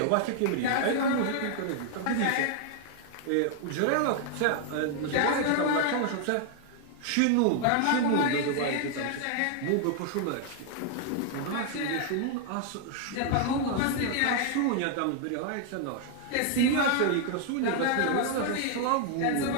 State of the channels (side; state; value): both; different; correlation 0.00